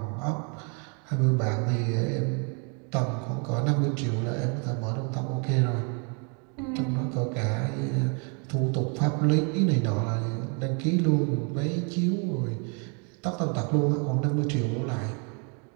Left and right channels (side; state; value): left; quieter; 36.6 dB